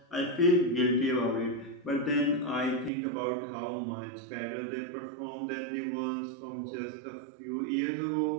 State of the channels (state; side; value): drops out; left; at 2.9 s